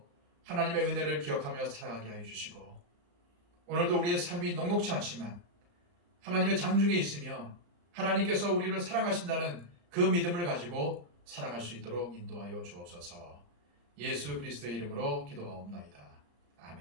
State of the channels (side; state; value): left; late; 34 ms